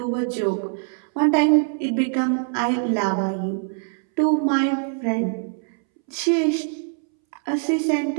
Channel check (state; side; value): silent; left; 63 dB below the other